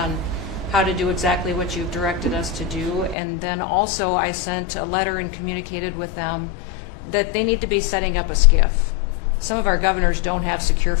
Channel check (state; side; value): drops out; right; at 3.2 s